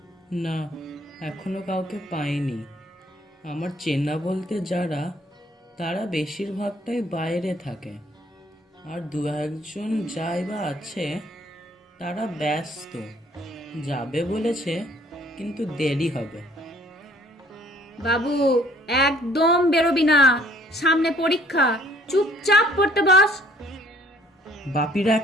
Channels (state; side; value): normal; both; correlation 0.59